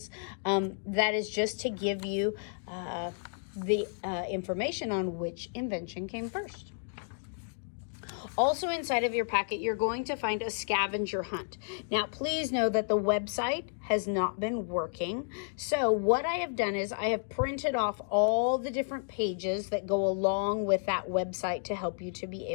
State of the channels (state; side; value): silent; right; digital silence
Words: That is just to give you the information on which invention came first. Also inside of your packet, you're going to find a scavenger hunt. Now, please know that the website has not been working. So what I have done is I have printed off all the different pages that go along with that website to help you to be